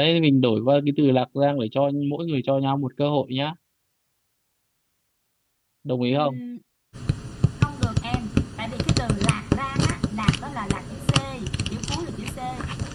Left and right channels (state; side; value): identical; both; correlation 1.00